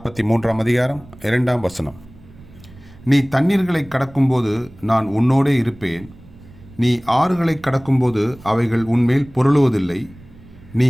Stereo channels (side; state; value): right; noise; rumble, 22 dB below the sound